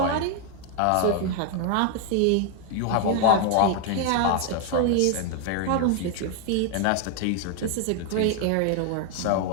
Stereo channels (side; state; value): both; different; correlation 0.00